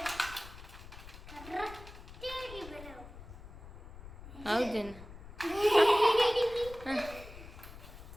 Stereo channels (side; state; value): left; noise; rumble, 15 dB below the sound